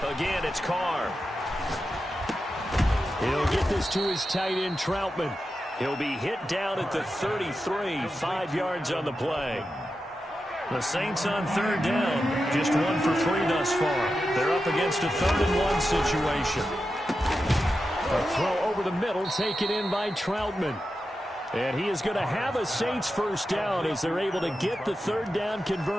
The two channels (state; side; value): normal; both; correlation 0.90